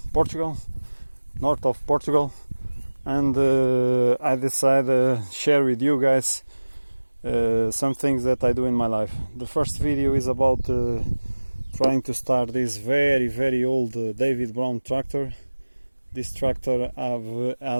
Portugal, north of Portugal, and I decided to share with you guys some things that I do in my life. The first video is about trying to start this very old David Brown tractor. This tractor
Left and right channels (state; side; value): inverted; both; correlation -1.00